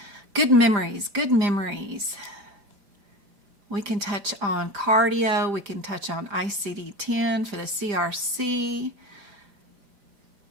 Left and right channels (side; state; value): left; late; 5.0 ms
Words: good memories. We can touch on cardio. We can touch on ICD-10 for the CRC.